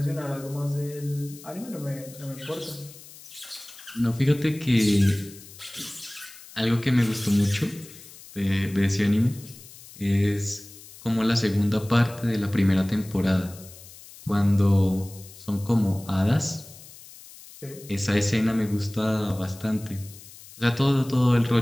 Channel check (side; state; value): left; noise; hiss, 19 dB below the sound